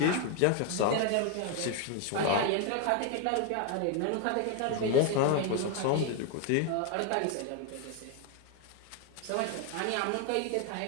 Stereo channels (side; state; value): both; different; correlation 0.01